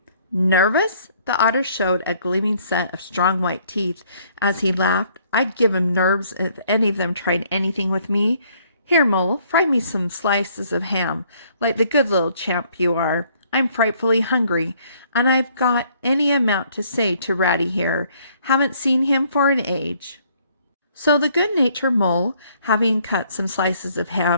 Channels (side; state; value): both; inverted; correlation -0.64